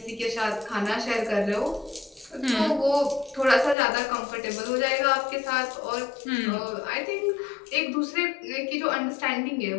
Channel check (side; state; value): right; drops out; at 3.8 s